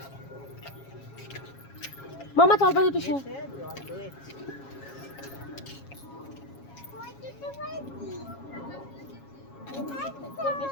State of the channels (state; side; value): late; right; 7.3 ms